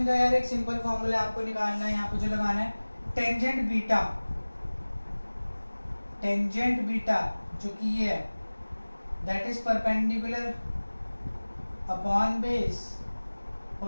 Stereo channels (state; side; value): inverted; both; correlation -1.00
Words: का यार एक सिंपल फॉर्मूला आपको निकालना है, यहाँ पे जो लगाना है टेंजेंट बीटा, टेंजेंट बीटा जो कि ये है, that is perpendicular upon base,